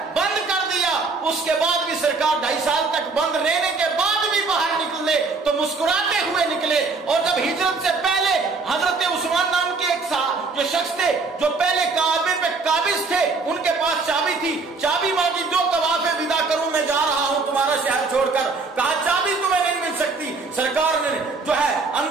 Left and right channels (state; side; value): quieter; left; 4.1 dB